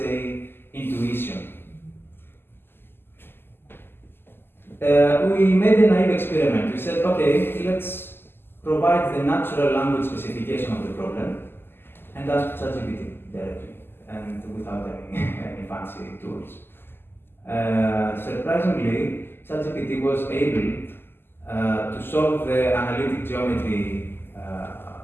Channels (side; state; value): right; late; 0.11 ms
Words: intuition. We made a naive experiment. We said, okay, let's provide the natural language specification of the problem and ask ChatGPT directly and without any fancy tools. Surprisingly, ChatGPT was able to solve the analytic geometry